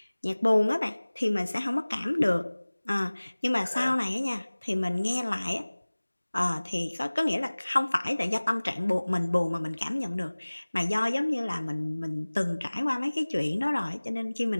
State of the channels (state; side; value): inverted; both; correlation -1.00